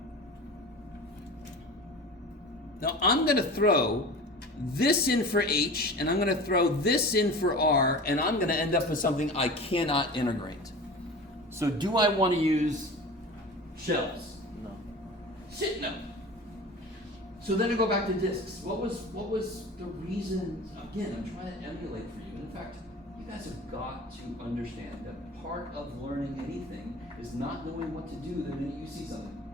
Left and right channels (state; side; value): normal; both; correlation 0.36